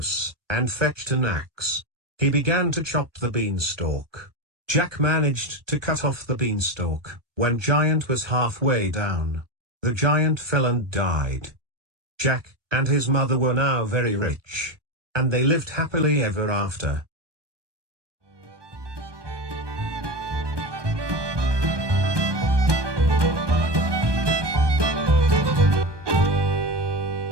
and fetched an axe. He began to chop the beanstalk. Jack managed to cut off the beanstalk, when Giant was halfway down. The giant fell and died. Jack and his mother were now very rich, and they lived happily ever after.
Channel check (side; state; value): left; late; 1.2 ms